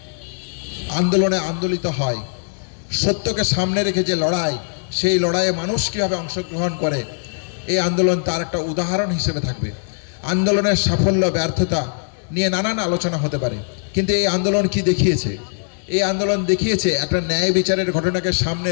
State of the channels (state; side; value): silent; right; 62 dB below the other